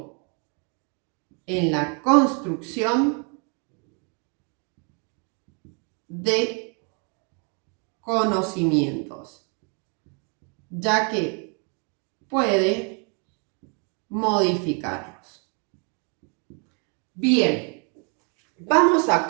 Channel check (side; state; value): left; quieter; 37.5 dB